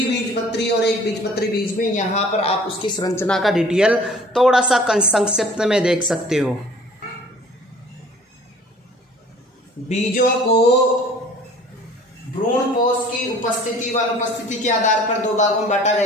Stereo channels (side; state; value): both; normal; correlation 0.50